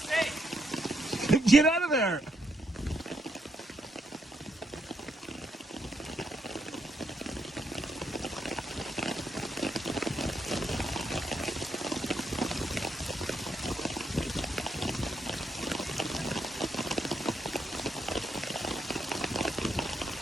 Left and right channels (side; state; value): both; normal; correlation 0.77